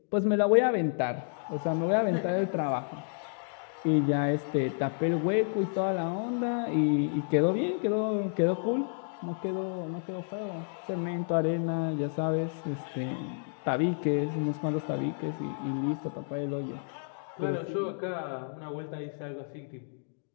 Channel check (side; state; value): right; silent; digital silence